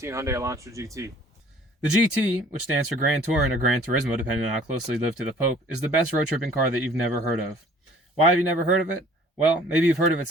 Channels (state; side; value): normal; both; correlation 0.53